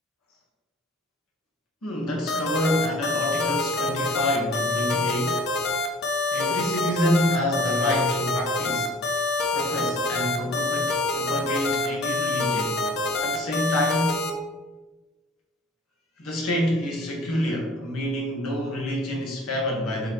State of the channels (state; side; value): normal; both; correlation 0.48